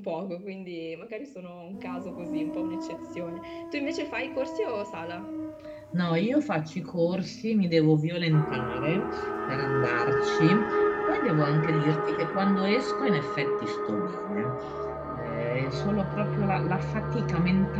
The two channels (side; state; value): both; identical; correlation 1.00